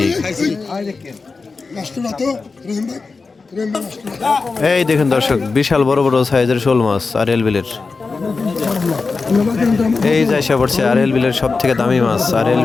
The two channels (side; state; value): right; quieter; 4.3 dB